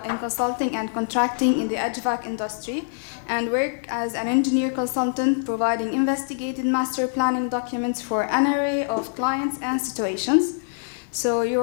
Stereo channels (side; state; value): right; silent; 62 dB below the other